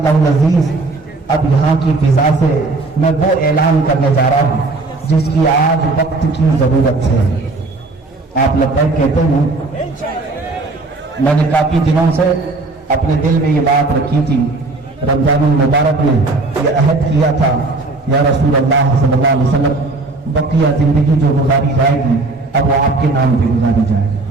العزیز اب یہاں کی فضا سے میں وہ اعلان کرنے جا رہا ہوں جس کی آج وقت کی ضرورت ہے. آپ لبیک کہتے ہیں. میں نے کافی دنوں سے اپنے دل میں یہ بات رکھی تھی, رمضان المبارک میں یہ عہد کیا تھا, یا رسول اللہ صلی اللہ علیہ وسلم بقیہ زندگی جو گزاری جائے گی اب وہ آپ کے نام پہ گزاری جائے گی.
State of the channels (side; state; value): left; quieter; 3.3 dB